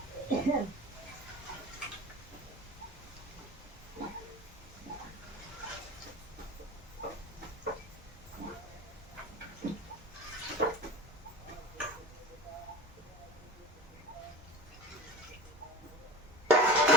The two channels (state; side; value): normal; both; correlation 0.31